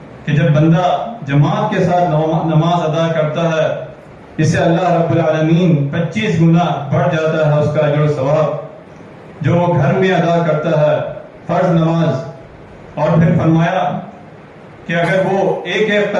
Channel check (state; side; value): identical; both; correlation 1.00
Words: کہ جب بندہ جماعت کے ساتھ نماز ادا کرتا ہے، اسے اللہ رب العالمین 25 گنا بڑھ جاتا ہے اس کا اجر و ثواب جو وہ گھر میں ادا کرتا ہے فرض نماز. اور پھر فرمایا کہ اگر وہ ایک ایک